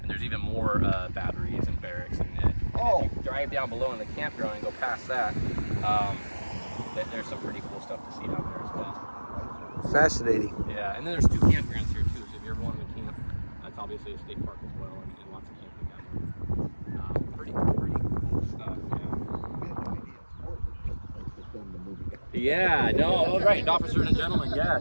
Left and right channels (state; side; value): inverted; both; correlation -1.00